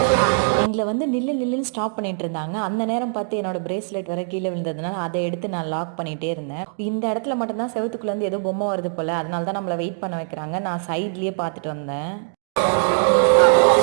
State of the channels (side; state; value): left; silent; digital silence